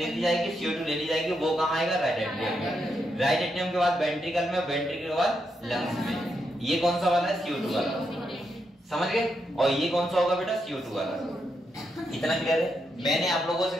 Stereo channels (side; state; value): both; normal; correlation 0.82